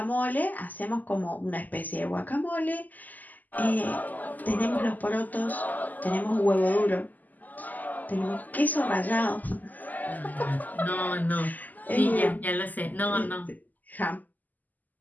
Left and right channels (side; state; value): right; late; 0.082 ms